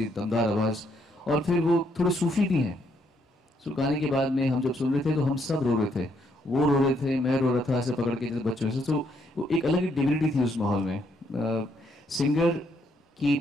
दमदार आवाज़. और फिर वो थोड़े सूफी भी हैं. सो गाने के बाद में हम जब सुन रहे थे तो हम सब रो रहे थे, वो रो रहे थे, मैं रो रहा था ऐसे पकड़ के जैसे बच्चों से. तो वो एक अलग ही डिविनिटी थी उस माहौल में. सिंगर की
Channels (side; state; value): both; normal; correlation 0.73